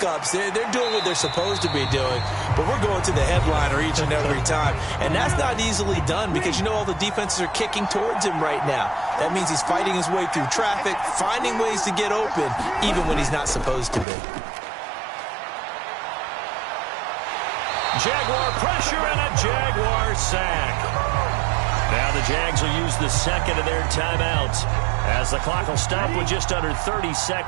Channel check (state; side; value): drops out; left; at 14.1 s